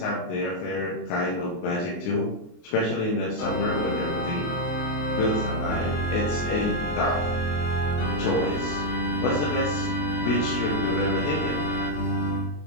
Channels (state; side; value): late; right; 23 ms